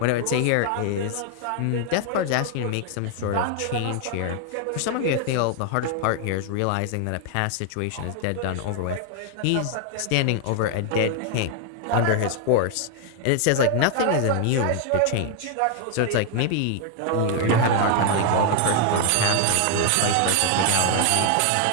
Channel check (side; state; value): both; different; correlation 0.00